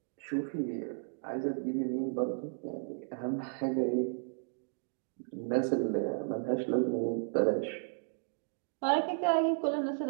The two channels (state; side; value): silent; left; digital silence